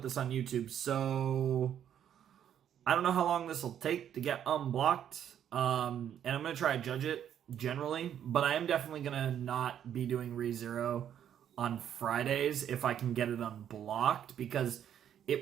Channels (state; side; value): quieter; left; 9.7 dB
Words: this on YouTube, so I don't know how long this will take to get unblocked, and I'm going to try to judge it generally, but I am definitely going to not be doing ReZero on Fridays if I can get it unblocked, because